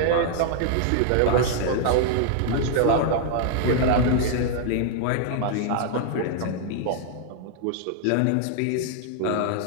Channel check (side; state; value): both; different; correlation 0.00